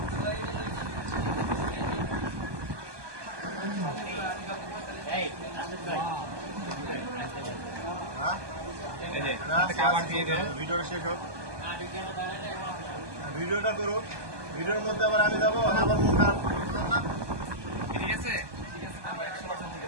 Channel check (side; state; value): left; late; 1.2 ms